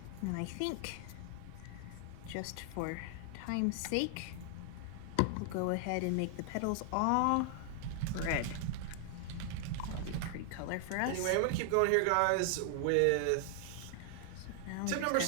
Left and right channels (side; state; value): both; different; correlation 0.00